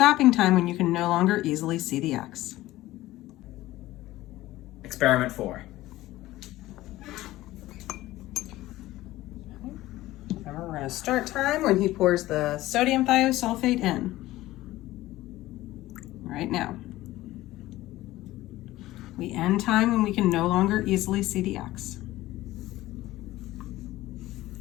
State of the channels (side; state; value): right; quieter; 16.6 dB